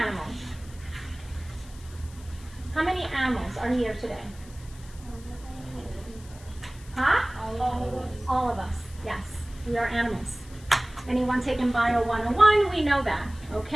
How many animals are here today? Huh? All of us, yes. We are animals. Anyone taking Bio 101, we know that,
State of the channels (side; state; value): left; noise; hiss, 22 dB below the sound